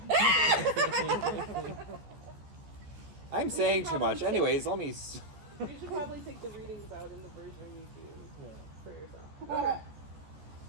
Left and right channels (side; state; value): left; late; 14 ms